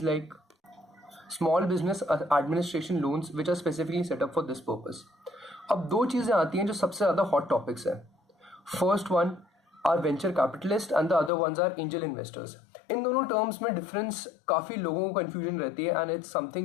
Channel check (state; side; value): drops out; right; at 11.3 s